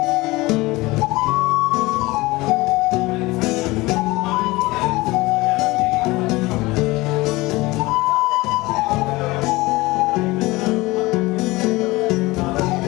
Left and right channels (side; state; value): right; quieter; 21.1 dB